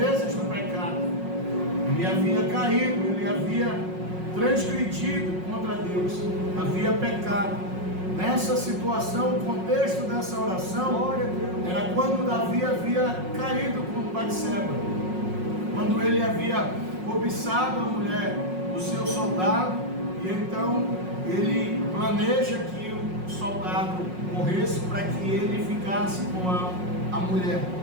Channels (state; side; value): late; left; 5.5 ms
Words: do pecado. Ele havia caído, ele havia transgredido contra Deus, havia pecado. Nessa situação, o contexto dessa oração era quando Davi havia caído com Batseba, quando ele havia cobiçado a mulher do seu soldado, e então ele planeja que o soldado morresse para que ele ficasse com a mulher.